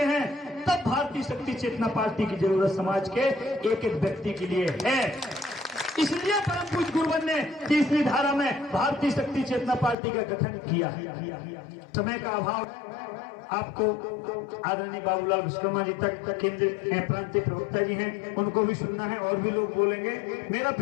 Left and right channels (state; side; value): drops out; right; at 10.0 s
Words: हैं, तब भारतीय शक्ति चेतना पार्टी की जरूरत समाज के एक एक व्यक्ति के लिए है। इसलिए परम पूज्य गुरुवर ने तीसरी धारा में भारतीय शक्ति चेतना पार्टी का गठन किया। समय का अभाव, आपको आदरणीय बाबूलाल विश्वकर्मा जी तक केंद्रीय प्रांतीय प्रवक्ता जी हैं, उनको भी सुनना है, और भी लोग बोलेंगे। मेरा